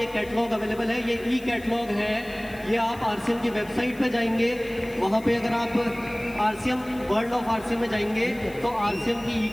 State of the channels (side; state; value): left; noise; hiss, 22 dB below the sound